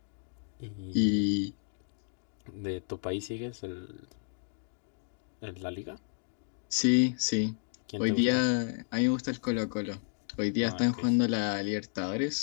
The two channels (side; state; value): right; silent; digital silence